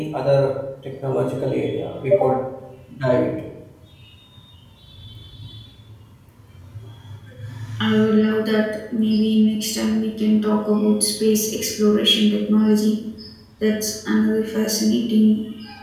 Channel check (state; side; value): identical; both; correlation 1.00